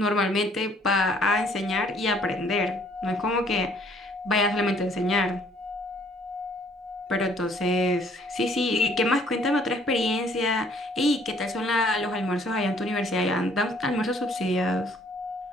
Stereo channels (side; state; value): both; normal; correlation 0.61